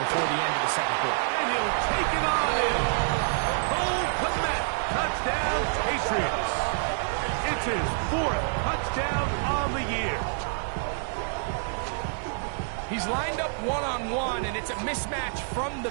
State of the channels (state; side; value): silent; left; 60 dB below the other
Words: the end of the second quarter. And he'll take it on in. Cole Kmet. Touchdown, Patriots. It's his 4th touchdown on the year. He's lined up one-on-one, and it's a mismatch from the